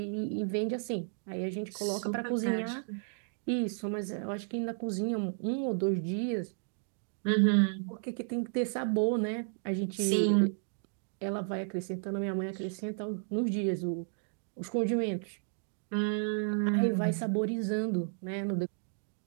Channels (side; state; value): left; silent; digital silence